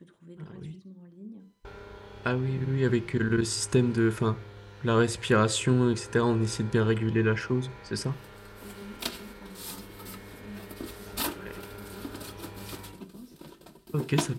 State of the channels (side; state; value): both; identical; correlation 1.00